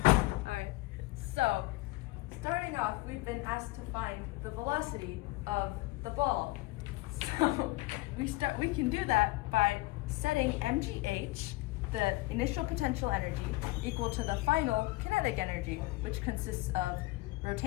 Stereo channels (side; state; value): right; quieter; 20.7 dB